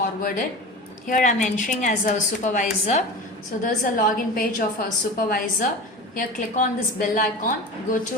Here I'm entering as a supervisor. So there's a login page of our supervisor. Here click on this bell icon, go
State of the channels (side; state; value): both; normal; correlation 0.32